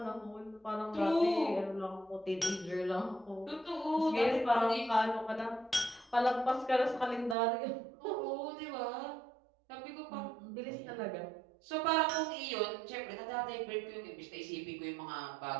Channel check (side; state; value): left; drops out; at 7.4 s